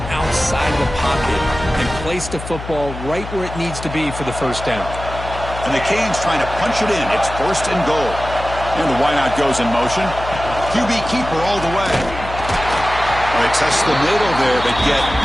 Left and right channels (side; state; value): left; noise; hum, 10 dB below the sound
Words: outside the pocket and place the football right where it needs to be for the 1st down. And the Canes trying to punch it in. It's 1st and goal. And the wideout goes in motion. QB keeper all the way. They test the middle there, but get